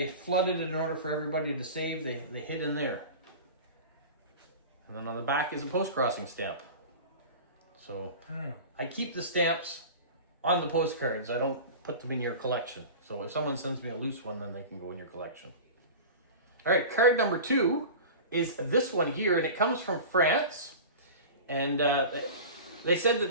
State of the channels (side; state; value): both; inverted; correlation -0.34